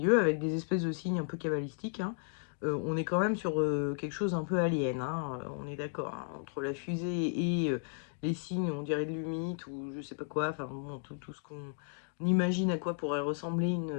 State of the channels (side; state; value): right; silent; 55 dB below the other